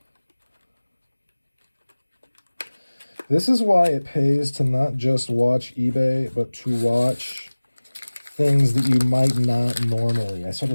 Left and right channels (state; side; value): inverted; both; correlation -1.00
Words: This is why it pays to not just watch eBay, but to watch things that you might not normally. I